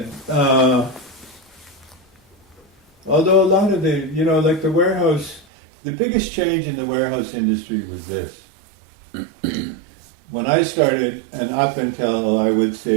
Although a lot of the, you know, like the warehouse, the biggest change in the warehouse industry was this. When I started, and up until I would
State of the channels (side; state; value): left; drops out; at 5.5 s